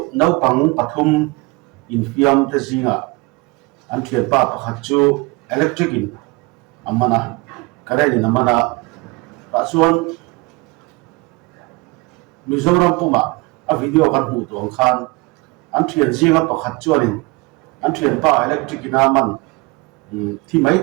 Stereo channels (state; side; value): quieter; left; 25.2 dB